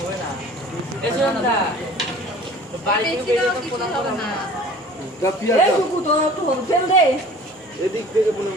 না। বাড়ি থেকে বেরিয়ে তো ফটো হবে না।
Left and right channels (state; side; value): normal; both; correlation 0.46